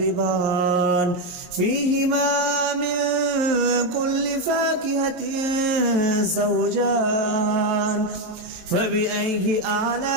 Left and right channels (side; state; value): left; late; 22 ms